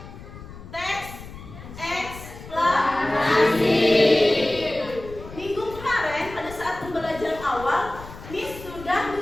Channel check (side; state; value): left; noise; rumble, 15 dB below the sound